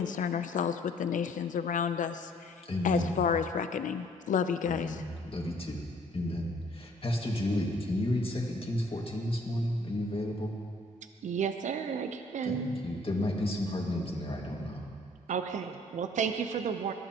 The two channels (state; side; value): normal; both; correlation 0.58